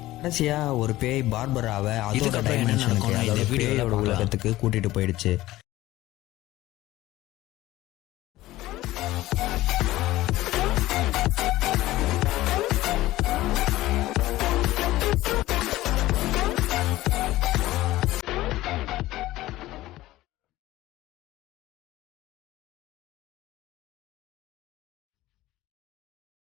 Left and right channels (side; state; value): right; quieter; 16.6 dB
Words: கடைசியாக ஒரு பேய் பார்பராவை அதோட டைமென்ஷனுக்கு, அதோட பேயோட உலகத்துக்கு கூட்டிகிட்டு போயிடுச்சு.